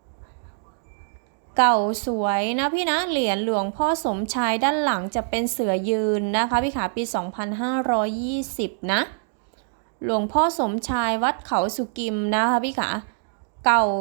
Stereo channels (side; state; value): left; silent; digital silence